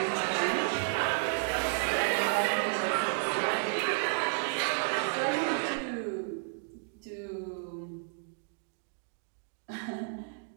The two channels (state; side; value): silent; left; digital silence